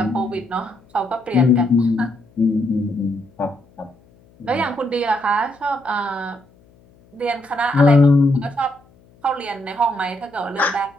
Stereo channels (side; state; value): left; noise; hum, 30 dB below the sound